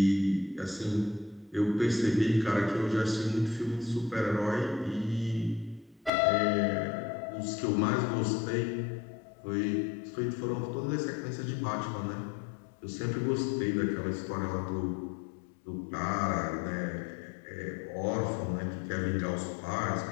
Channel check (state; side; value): drops out; right; at 6.1 s